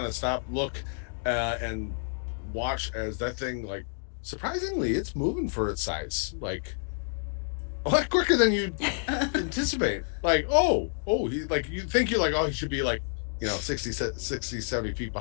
of stop, look, and watch as that thing, like, surprisingly, it's moving for its size, like a lot quicker than you anticipate. Like, he, like, you think you're like, oh, he should be like, 60, 70 feet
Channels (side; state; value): right; silent; 59 dB below the other